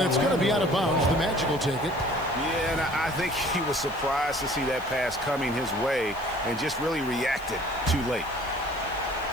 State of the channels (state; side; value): noise; left; hiss, 23 dB below the sound